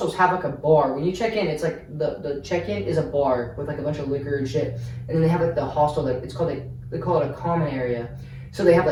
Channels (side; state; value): both; identical; correlation 1.00